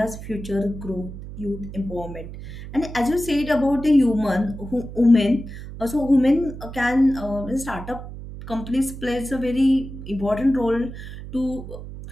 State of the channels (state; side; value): noise; right; hum, 11 dB below the sound